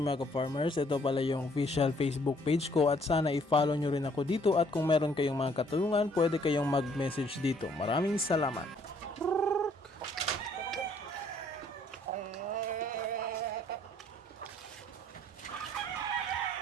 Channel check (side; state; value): both; normal; correlation 0.63